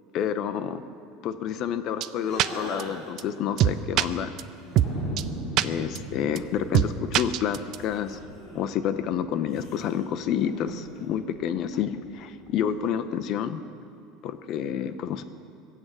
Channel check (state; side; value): normal; both; correlation 0.33